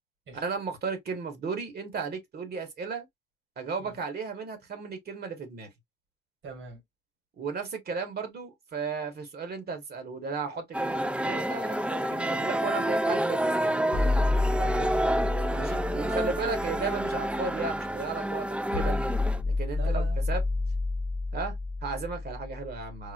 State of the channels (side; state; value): both; normal; correlation 0.73